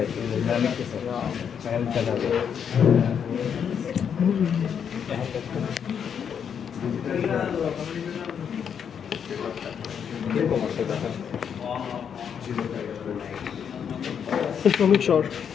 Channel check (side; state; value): right; quieter; 7.7 dB